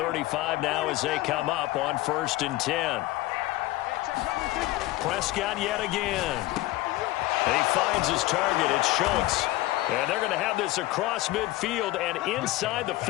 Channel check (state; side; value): quieter; right; 18.0 dB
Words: now as they come up on 1st and 10. Prescott yet again. He finds his target. It's Schultz. And they're going to have this across midfield and inside the